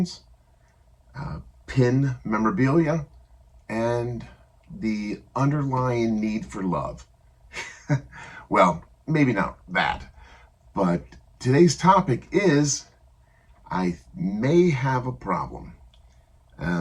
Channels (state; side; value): identical; both; correlation 1.00